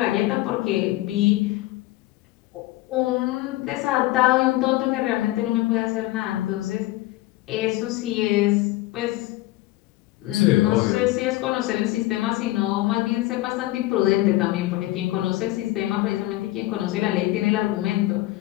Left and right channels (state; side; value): quieter; right; 17.8 dB